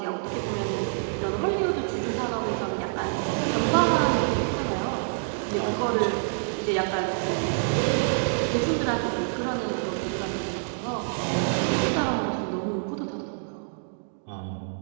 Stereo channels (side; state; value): left; silent; digital silence